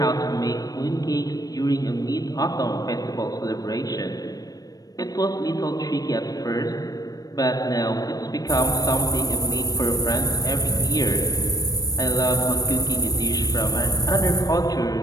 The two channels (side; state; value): right; late; 0.18 ms